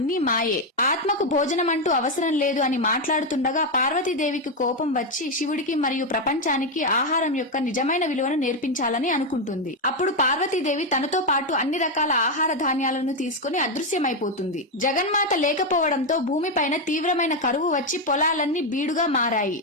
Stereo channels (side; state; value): both; normal; correlation 0.06